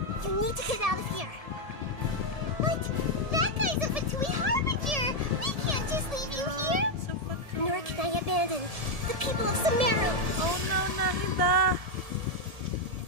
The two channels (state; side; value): late; left; 1.7 ms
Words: You need to get out of here. But that guy's a Fatui Harbinger. We can't just leave you here. Nor can I abandon the people of Sumeru. Oh no, Nahida.